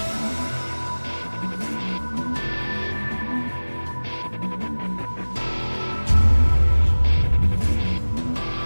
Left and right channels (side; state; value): both; inverted; correlation -1.00